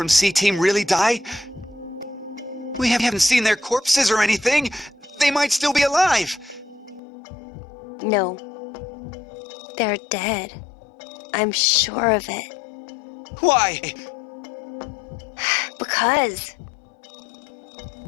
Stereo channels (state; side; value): drops out; right; at 7.0 s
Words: C-Team really die? We haven't seen their corpses or anything. They might still be alive. No. They're dead. I'm sure of it. Why? Because...